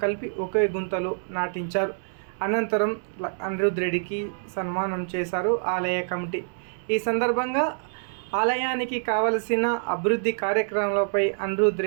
కలిపి ఒకే గుంతలో నాటించారు. అనంతరం అనిరుద్ రెడ్డికి సన్మానం చేశారు ఆలయ కమిటీ. ఈ సందర్భంగా ఆలయానికి కావలసిన అభివృద్ధి కార్యక్రమాలపై అనిరుద్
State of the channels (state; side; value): silent; left; digital silence